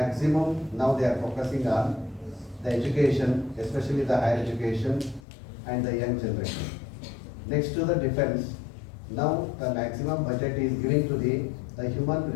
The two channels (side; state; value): right; drops out; at 5.2 s